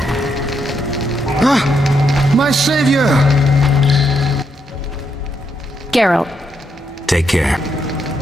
Ah, my savior! Geralt. Take care.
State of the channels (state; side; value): normal; both; correlation 0.78